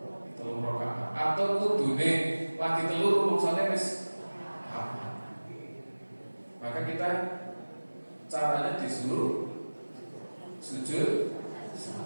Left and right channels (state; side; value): inverted; both; correlation -1.00